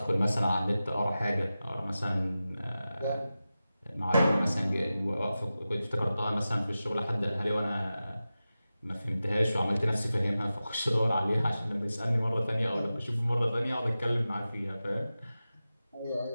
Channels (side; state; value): both; inverted; correlation -0.94